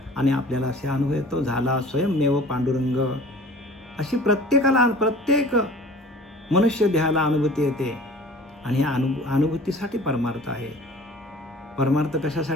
आणि आपल्याला असे अनुभव येतो, झाला स्वयंमेव पांडुरंग. अशी प्रत्येक मनुष्य देहाला अनुभूती येते आणि ह्या अनुभूतीसाठी परमार्थ आहे. परमार्थ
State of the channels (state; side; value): normal; both; correlation 0.46